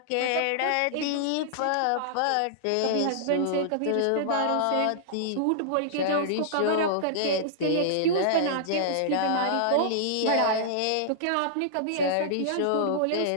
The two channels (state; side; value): different; both; correlation -0.01